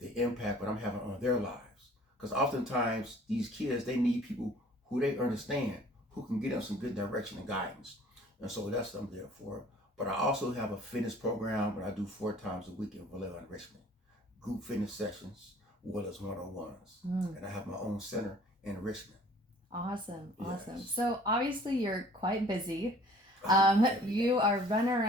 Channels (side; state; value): both; normal; correlation 0.52